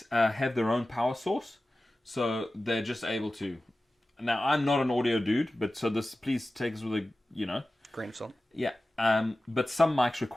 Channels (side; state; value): both; normal; correlation 0.95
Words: have their own power source, so they're just able to now I'm not an audio dude, but so this, please take this with a, grain of salt. Yeah. But some mics